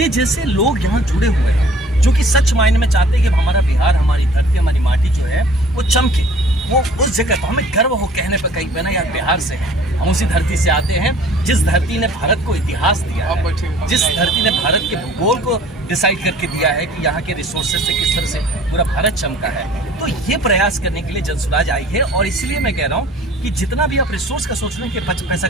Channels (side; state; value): both; normal; correlation 0.51